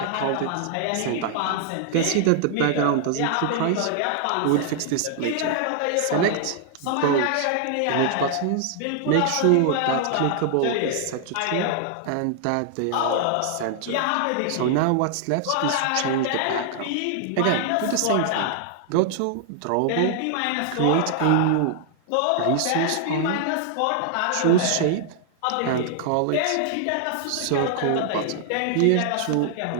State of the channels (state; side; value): different; both; correlation 0.00